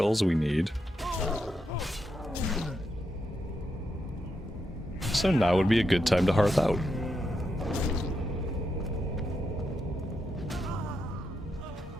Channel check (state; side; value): normal; both; correlation 0.83